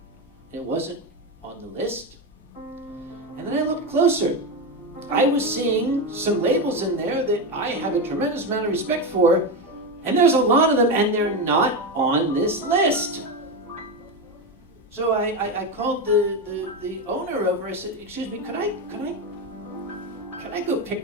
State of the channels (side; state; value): both; normal; correlation 0.14